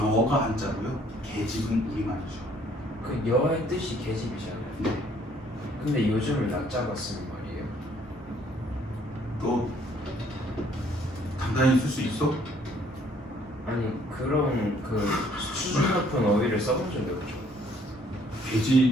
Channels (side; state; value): both; normal; correlation 0.62